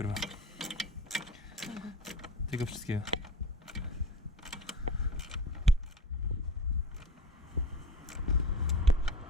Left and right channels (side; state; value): both; normal; correlation 0.37